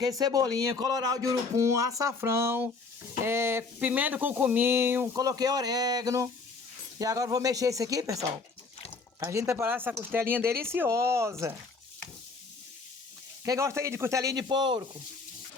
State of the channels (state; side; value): quieter; right; 4.2 dB